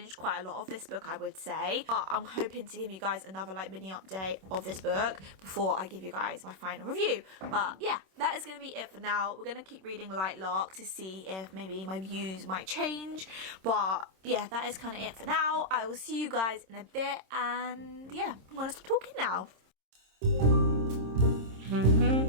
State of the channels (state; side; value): late; left; 26 ms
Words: quite a lot of this book, I would say. But I'm hoping to give you guys another like mini update of this book before I give you guys my final review. But yeah, that is going to be it for now. We're going to keep reading Lightlark to see if maybe my views might change. But yeah, that is kind of it for now. I will see you guys in a bit, and yeah, I'm going to stop talking now.